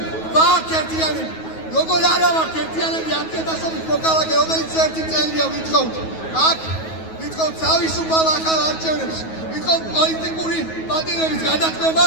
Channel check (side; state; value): right; late; 9.3 ms